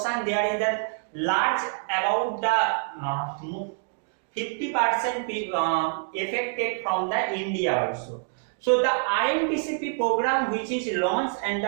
there is a large about the 50% affected from the India also. So the RMTCP program, which is launched in the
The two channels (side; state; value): left; silent; 61 dB below the other